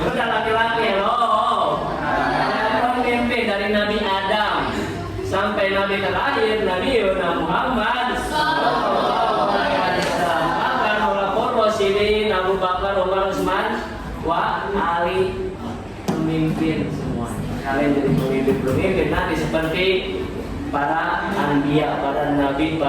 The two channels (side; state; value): both; identical; correlation 1.00